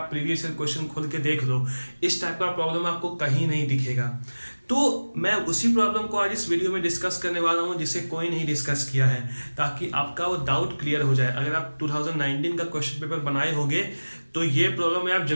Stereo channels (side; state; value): both; inverted; correlation -1.00